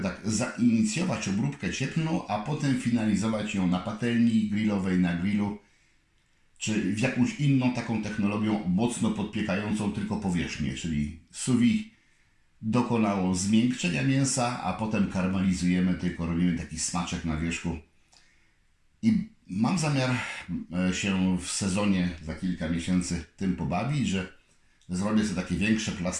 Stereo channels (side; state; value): both; identical; correlation 1.00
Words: tak zainicjować obróbkę cieplną, a potem finalizować ją na patelni grillowej, na grillu, czy w jakąś inną taką technologią mocno podpiekającą tylko powierzchnię, czyli sous vide dokonało zmiękczenia mięsa, a potem karmelizujemy, tylko robimy taki smaczek na wierzchu. I Mam zamiar się w sezonie za kilka miesięcy tym pobawić, że zrobię sobie takie większe